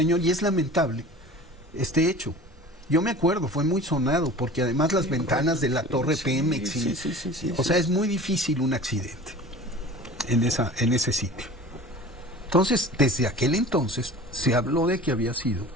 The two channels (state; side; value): normal; both; correlation 0.40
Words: Y es lamentable este hecho. Yo me acuerdo, fue muy sonado, porque además las ventanas de la torre Pemex, o sea, es muy difícil un accidente en ese sitio. Entonces, desde aquel entonces se habló de que había sido